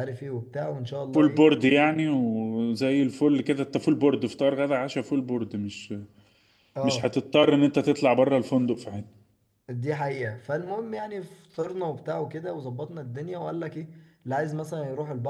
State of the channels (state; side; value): identical; both; correlation 1.00